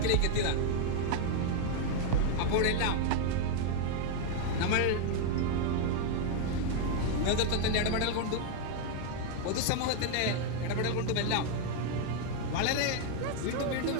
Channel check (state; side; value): different; both; correlation 0.00